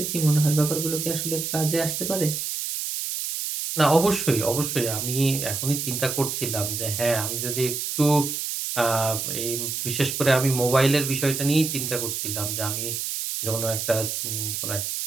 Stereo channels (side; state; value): right; noise; hiss, 3 dB below the sound